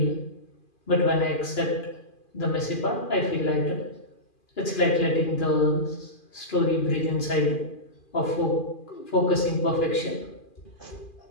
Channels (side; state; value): right; late; 2.4 ms